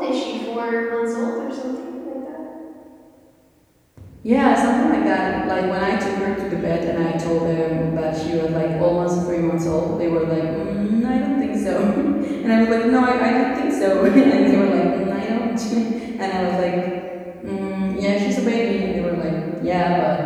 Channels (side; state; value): both; identical; correlation 1.00